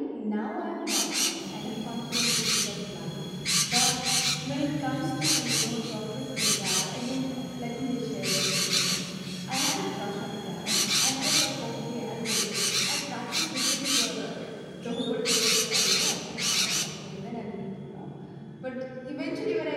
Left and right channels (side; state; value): both; identical; correlation 1.00